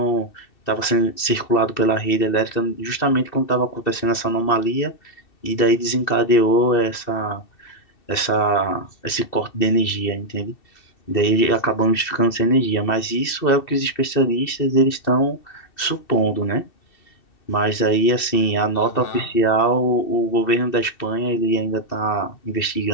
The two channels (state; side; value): late; right; 2.7 ms